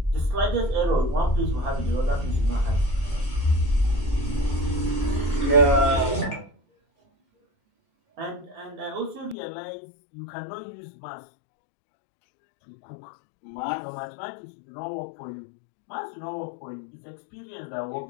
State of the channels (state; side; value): drops out; right; at 9.3 s